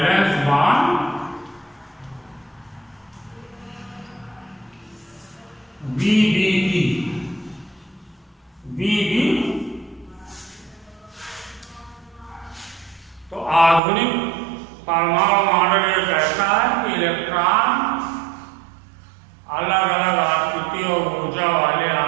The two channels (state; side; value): drops out; left; at 13.8 s